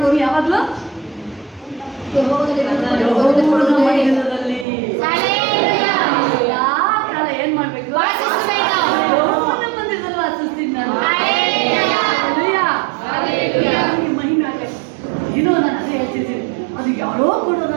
ಯಾವಾಗಲೂ ಯೆಹೋವನ ಮಂದಿರದಲ್ಲಿ ಎಲ್ಲಾ ಕಾಲ ಏನ್ ಮಾಡ್ಬೇಕು? ಯೆಹೋವನ ಮಂದಿರದಲ್ಲಿ ವಾಸಿಸ್ತೀನಿ ನಾನು. ಮಹಿಮೆ ಆಗಲಿ. ಏನೋ ನಾನು ಅದೇ ಹೇಳ್ತಿದ್ದೀನಿ, ಅದು ಯಾರೋ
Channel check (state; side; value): drops out; left; at 4.7 s